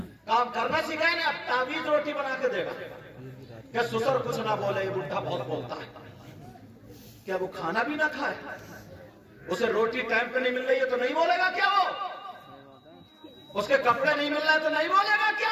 کام کرنا سکھایا نہیں. اب تعویذ روٹی بنا کے دے گا کہ سسر کچھ نہ بولے، یہ بڈھا بہت بولتا ہے. کیا وہ کھانا بھی نہ کھائے؟ اسے روٹی ٹائم پہ نہیں مل رہی ہے تو نہیں بولے گا کیا؟ وہ اس کے کپڑے نہیں مل رہے تو نہیں بولے گا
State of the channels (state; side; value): identical; both; correlation 1.00